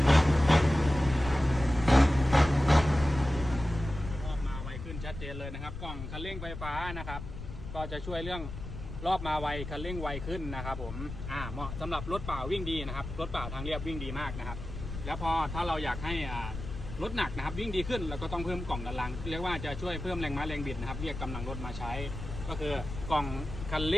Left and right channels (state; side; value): noise; left; rumble, 9 dB below the sound